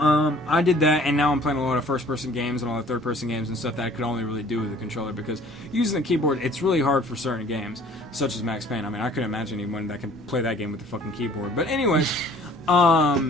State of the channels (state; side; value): normal; both; correlation 0.53